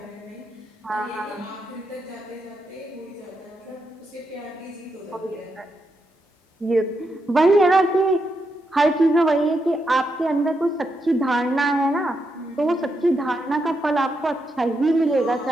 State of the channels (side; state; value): both; normal; correlation 0.83